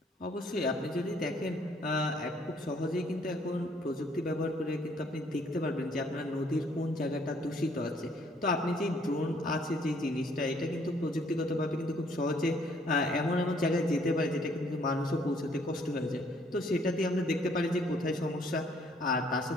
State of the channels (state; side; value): normal; both; correlation 0.64